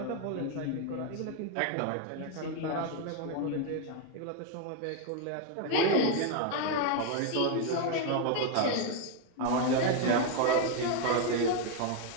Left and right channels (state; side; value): different; both; correlation 0.01